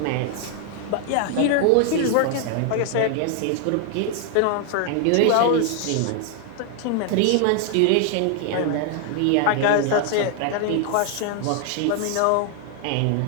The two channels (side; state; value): both; different; correlation 0.00